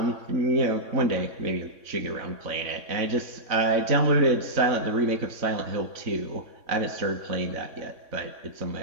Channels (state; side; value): late; left; 3.6 ms